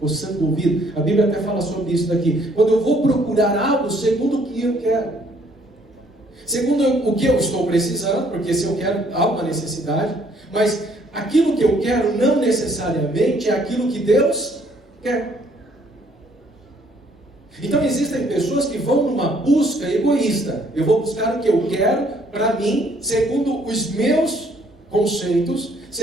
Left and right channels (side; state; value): both; normal; correlation 0.64